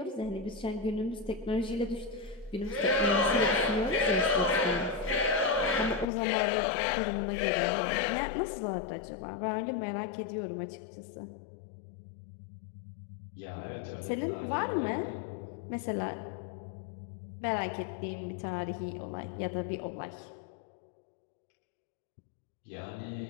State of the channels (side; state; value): right; drops out; at 6.1 s